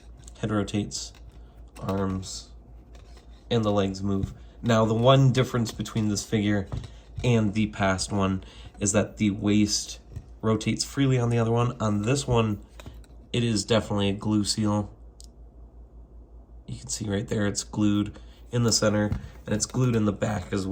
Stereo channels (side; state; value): both; identical; correlation 1.00